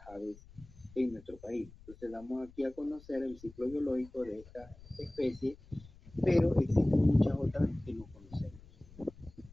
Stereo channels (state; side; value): noise; left; rumble, 21 dB below the sound